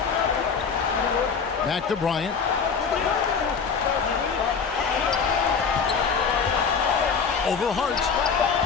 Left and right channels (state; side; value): quieter; right; 5.8 dB